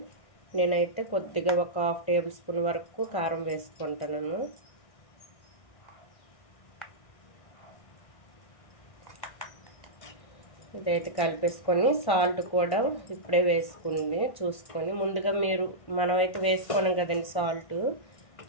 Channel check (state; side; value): late; right; 1.6 ms